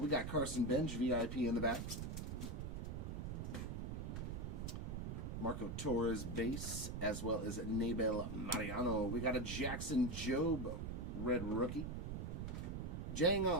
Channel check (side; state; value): right; noise; rumble, 4 dB below the sound